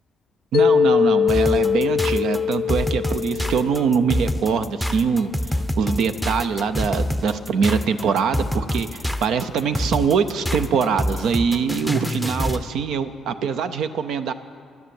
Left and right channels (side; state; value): both; normal; correlation 0.72